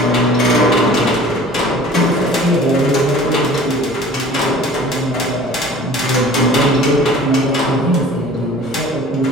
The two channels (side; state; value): both; normal; correlation 0.46